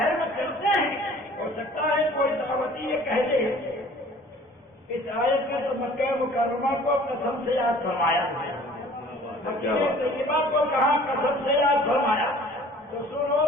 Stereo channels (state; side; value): normal; both; correlation 0.50